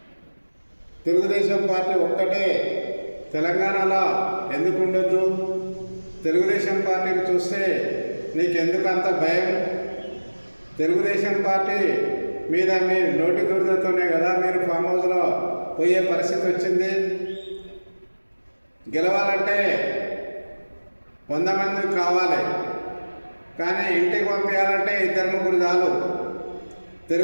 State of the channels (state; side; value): inverted; both; correlation -1.00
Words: తెలుగుదేశం పార్టీ ఒక్కటే తెలంగాణలో ఎందుకు ఉండొద్దు? తెలుగుదేశం పార్టీని చూస్తే నీకెందుకు అంత భయం? తెలుగుదేశం పార్టీ మీద మీ నోటి దురదతోనే కదా మీరు ఫామ్ హౌస్లో పోయే పరిస్థితి వచ్చింది. గెలవాలంటే 100 మంది కావాలి, కానీ ఇంటికి పంపించాలంటే 2-3 చాలు.